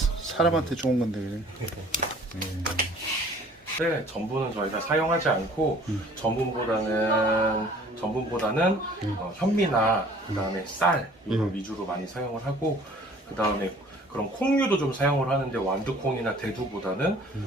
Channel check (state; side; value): normal; both; correlation 0.52